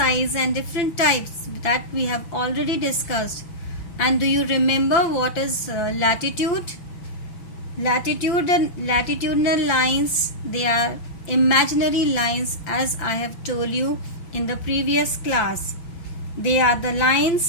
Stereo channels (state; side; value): late; right; 5.8 ms